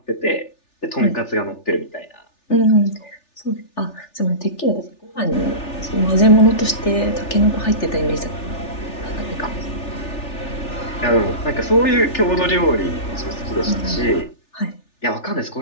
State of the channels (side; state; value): right; late; 3.4 ms